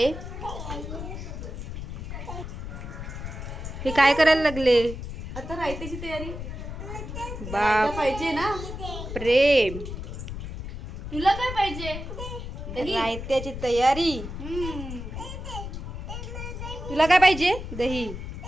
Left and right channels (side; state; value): left; noise; rumble, 8 dB below the sound